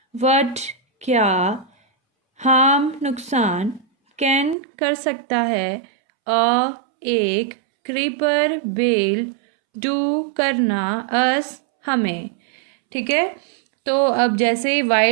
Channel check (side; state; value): left; drops out; at 4.5 s